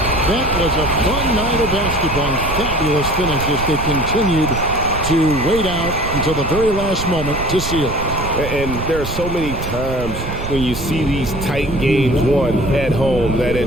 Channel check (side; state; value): right; noise; rumble, 7 dB below the sound